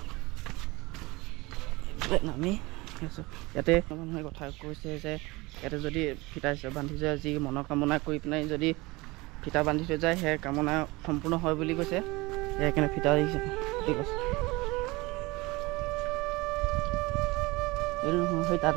নামি ইয়াতে মানুহে কথা কৈছে যে ইয়াতে যদি ফিতা বান্ধি যায়, যি মনৰ কামনা কৰি পেলাই যদি ফিতা বান্ধি থৈ যায়, সেই কামনা সম্পূৰ্ণ হয় বুলি কৈছে। সেইকাৰণে ফিতা দিছে, ঠিক আছে। এইটো নহয়, সেই তাত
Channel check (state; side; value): quieter; left; 22.8 dB